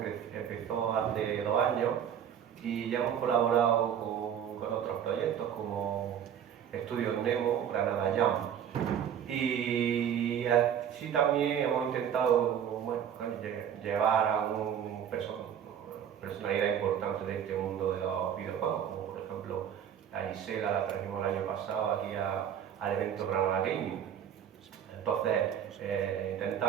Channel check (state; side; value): quieter; left; 9.0 dB